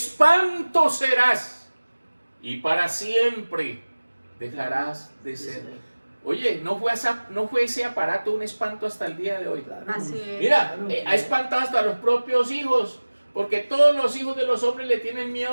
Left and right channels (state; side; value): inverted; both; correlation -1.00